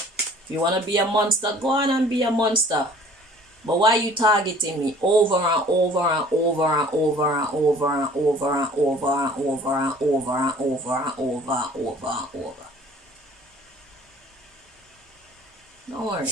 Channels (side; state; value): both; normal; correlation 0.51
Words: you want to be a monster, go on and be a monster. But why are you targeting me over and over and over and over and over and over and over and over and over and over and over and over and over? Don't worry.